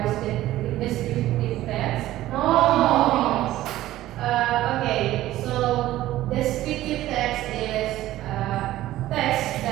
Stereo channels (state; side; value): quieter; left; 15.0 dB